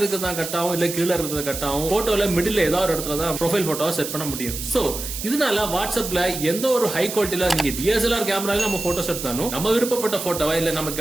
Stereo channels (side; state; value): right; noise; hiss, 7 dB below the sound